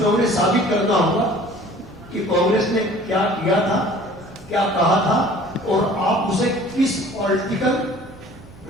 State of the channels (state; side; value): normal; both; correlation 0.49